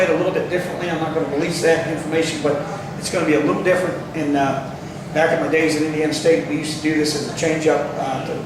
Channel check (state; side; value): identical; both; correlation 1.00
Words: it a little bit differently. I'm not going to release that information, but it's going to be a little different. And back in my days at Indiana State, we used to do this as a change-up